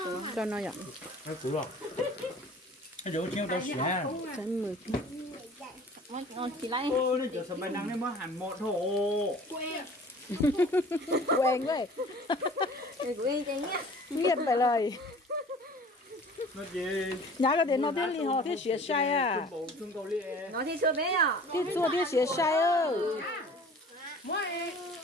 nó nhận Nó cũ rồi. Cái chỗ chiêu tao xé. sẽ 10 Ngon chị lấy. Ô, nó giờ sầm bài năng nên mới hẳn một hộ. quen vậy Quên chị nhá. biết phải lời nó gì nhà cái đến nó thiên li họ thiên xuyên sai à trung cầu li nó thì chưa biết à thiên chua thiên xuyên sai ơ mỗi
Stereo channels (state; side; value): normal; both; correlation 0.46